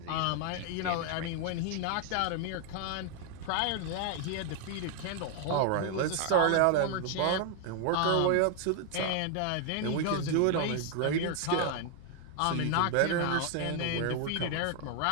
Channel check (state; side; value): different; both; correlation 0.00